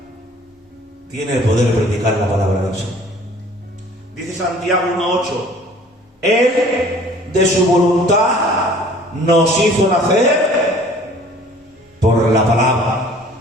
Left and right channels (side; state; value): both; normal; correlation 0.51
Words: Tiene el poder de predicar la palabra del Señor. Dice Santiago 1:8, Él de su voluntad nos hizo nacer por la palabra.